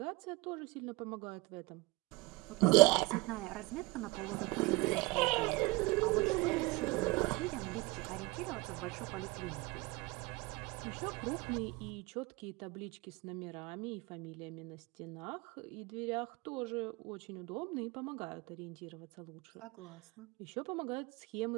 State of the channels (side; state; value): left; quieter; 23.9 dB